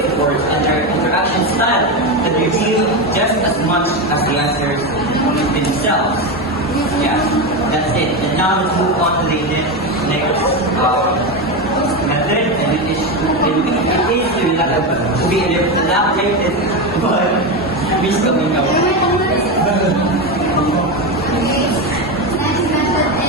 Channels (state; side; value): normal; both; correlation 0.14